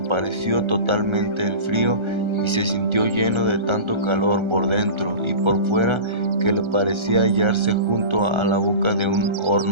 totalmente el frío y se sintió lleno de tanto calor por dentro y por fuera que le parecía hallarse junto a la boca de un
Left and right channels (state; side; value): late; left; 1.3 ms